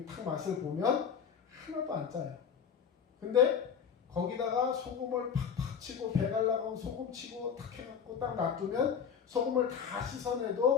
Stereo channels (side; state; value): right; quieter; 7.2 dB